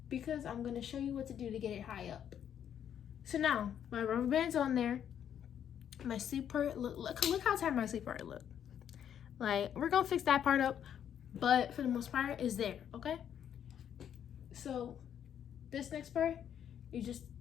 because I'm gonna show you what to do to get it high up. So now my rubber band's on there. My sleep part, look how tight my sleep part look. Like, we're gonna fix that part up, but for the most part is there, okay? So this next part, you just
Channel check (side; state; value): right; quieter; 9.3 dB